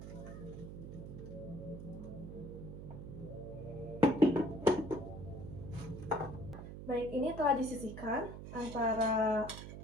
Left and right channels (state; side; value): noise; right; hum, 10 dB below the sound